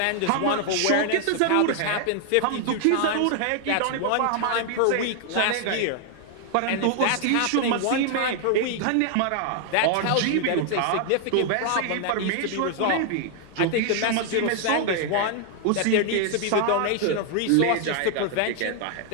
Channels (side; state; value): both; different; correlation 0.00